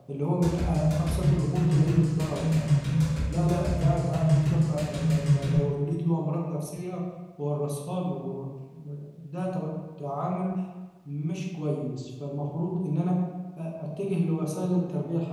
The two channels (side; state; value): both; identical; correlation 1.00